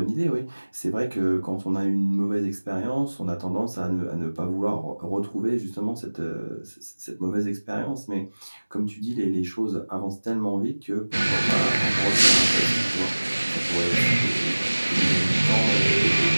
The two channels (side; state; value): both; inverted; correlation -1.00